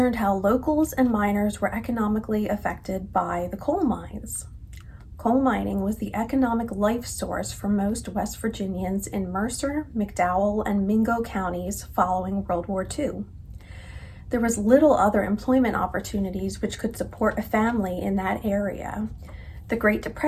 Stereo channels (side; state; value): both; identical; correlation 1.00